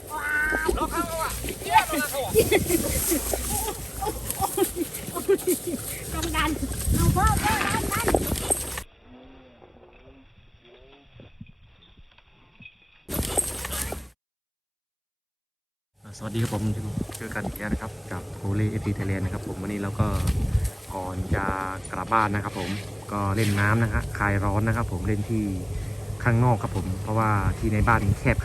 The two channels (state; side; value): identical; both; correlation 1.00